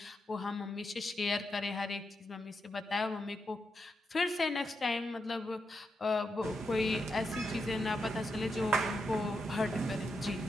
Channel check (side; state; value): both; normal; correlation 0.85